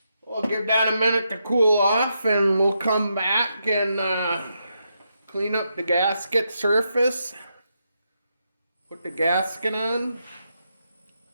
We'll give that a minute to cool off, and we'll come back and clean up the gasket surface. Put the gasket on.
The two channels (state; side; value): inverted; both; correlation -0.82